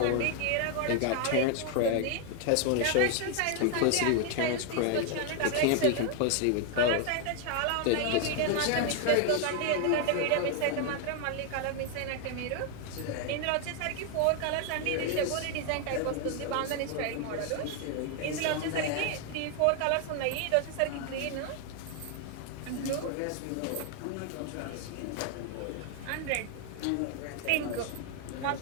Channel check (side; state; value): both; different; correlation 0.00